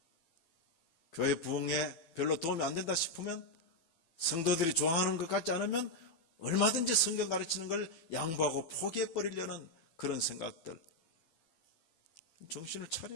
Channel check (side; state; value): right; late; 12 ms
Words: 교회 부흥에 별로 도움이 안 된다 싶으면 성도들이 좋아하는 것 같지 않으면 얼마든지 성경 가르치는 걸 양보하고 포기해 버리려는 그런 생각들. 정신을